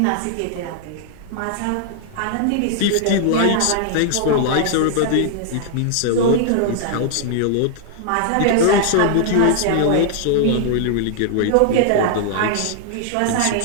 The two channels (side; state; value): both; different; correlation -0.01